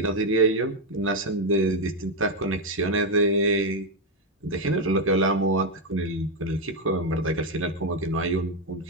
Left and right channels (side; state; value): both; normal; correlation 0.05